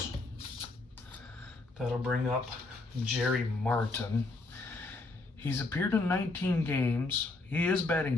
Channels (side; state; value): right; quieter; 3.3 dB